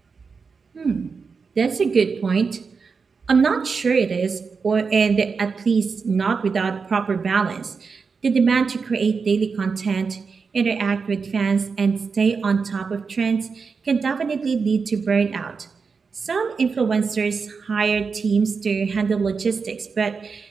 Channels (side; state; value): left; quieter; 5.1 dB